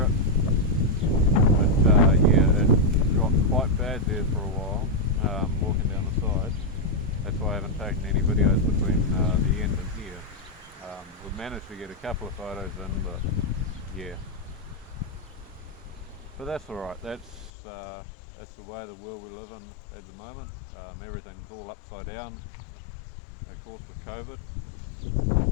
it, but yeah, it got quite bad there for a while, walking down the side. That's why I haven't taken any videos between the end and here. We've managed to get a couple of photos in, but yeah. But that's alright, that's the way the world we live in at the moment. Everything's all upside down, of course, with COVID.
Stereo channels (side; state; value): right; drops out; at 17.5 s